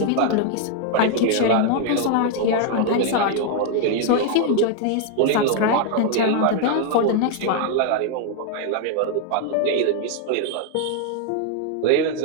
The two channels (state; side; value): different; both; correlation 0.00